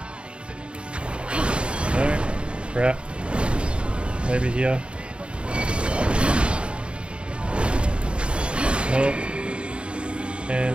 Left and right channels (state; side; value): late; left; 0.057 ms